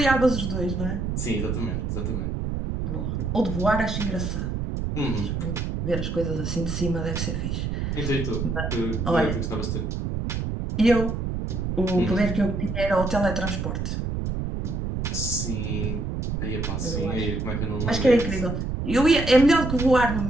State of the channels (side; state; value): right; noise; rumble, 2 dB below the sound